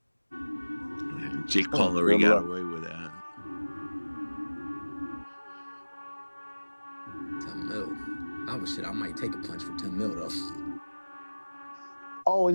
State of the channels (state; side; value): inverted; both; correlation -1.00